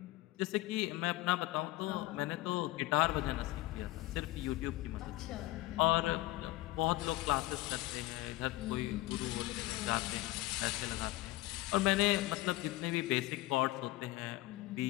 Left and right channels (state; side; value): quieter; right; 18.3 dB